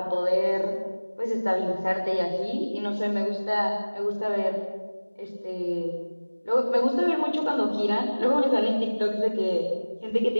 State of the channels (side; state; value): both; inverted; correlation -1.00